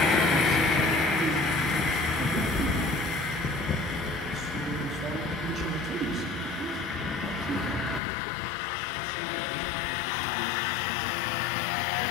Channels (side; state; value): right; drops out; at 8.0 s